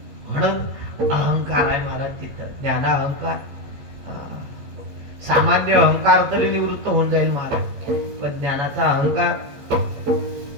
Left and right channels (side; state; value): left; late; 15 ms